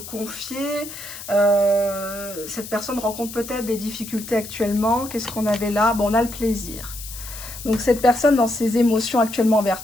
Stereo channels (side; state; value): left; noise; hiss, 12 dB below the sound